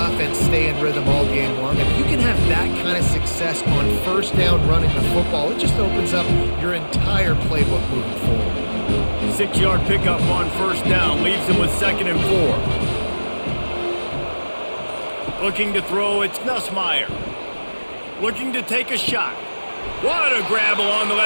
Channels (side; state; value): both; inverted; correlation -1.00